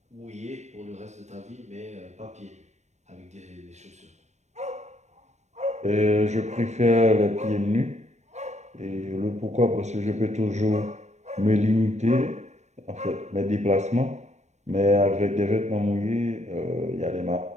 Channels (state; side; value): late; left; 0.33 ms